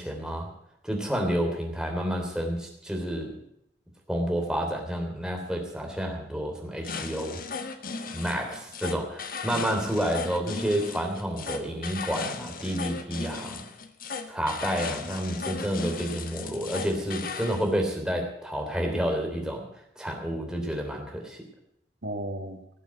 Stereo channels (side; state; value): both; normal; correlation 0.70